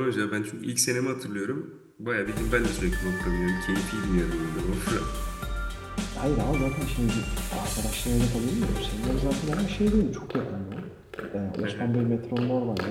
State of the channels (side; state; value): both; identical; correlation 1.00